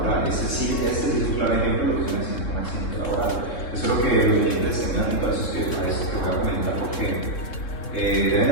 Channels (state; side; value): late; right; 3.7 ms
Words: Este es un claro ejemplo de lo que es un accidente laboral. Eso es lo que los clientes tengan y todos esos que voy a comentar, porque deben de